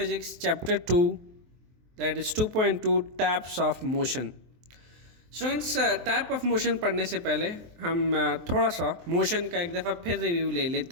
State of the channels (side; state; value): left; late; 23 ms